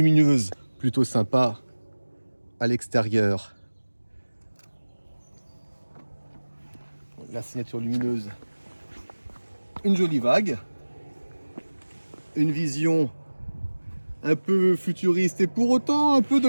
plutôt sympa à l'extérieur. La signature lumineuse, une jolie vague, une vision un peu futuriste et pour autant un peu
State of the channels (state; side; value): inverted; both; correlation -1.00